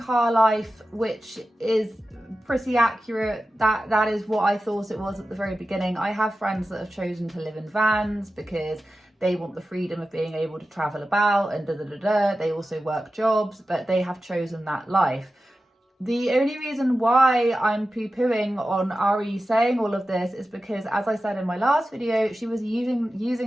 life, which is pretty accurate. That is what I thought it was at the very beginning. I have friends that have chosen to live in vans because they want the freedom of being able to travel about and They also work jobs, but they have chosen that life. The only reason why I'm poo-pooing on Ari saying all of this is because, as I said in my last video, she was using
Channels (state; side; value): normal; both; correlation 0.93